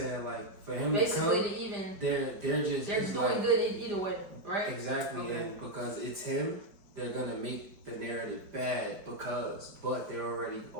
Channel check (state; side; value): late; left; 5.1 ms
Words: like for him Basically, to come, to even they're just doing like, good either way, right? Exactly, Okay. and because it's him, they're gonna make the narrative bad but they're already